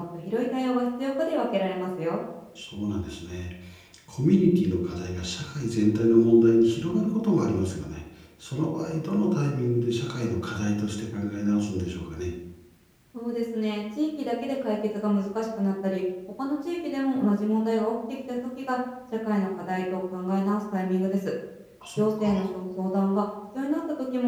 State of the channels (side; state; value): both; identical; correlation 1.00